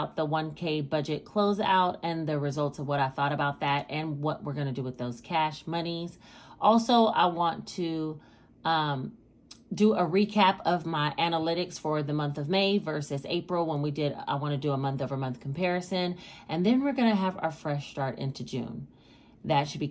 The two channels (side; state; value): both; identical; correlation 1.00